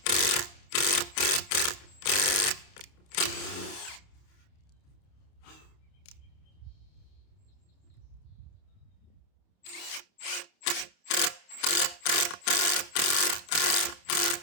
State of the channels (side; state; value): right; late; 29 ms